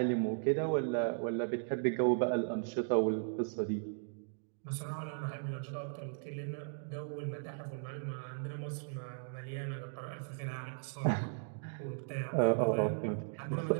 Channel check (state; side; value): silent; left; digital silence